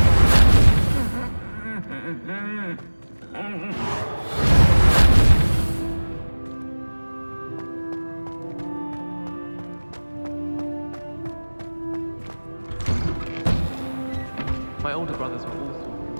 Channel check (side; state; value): both; inverted; correlation -1.00